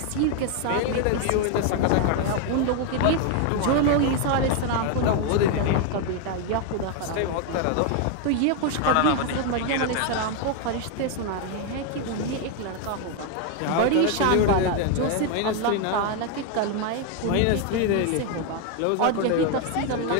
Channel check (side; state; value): both; different; correlation 0.01